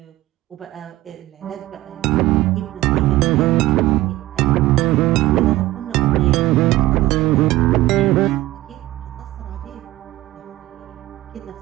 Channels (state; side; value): quieter; left; 16.6 dB